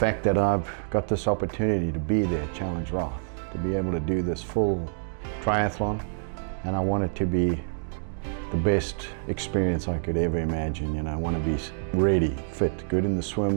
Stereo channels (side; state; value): left; silent; digital silence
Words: that I've got this opportunity to be there at Challenge Roth, to be able to do this full triathlon, and I want it to be the best experience I could ever imagine. You know, I want to be ready, fit, good in the